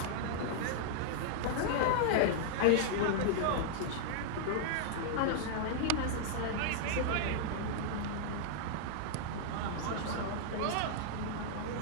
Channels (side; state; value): both; different; correlation -0.01